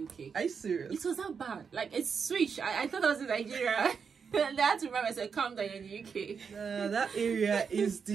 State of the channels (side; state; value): left; quieter; 6.1 dB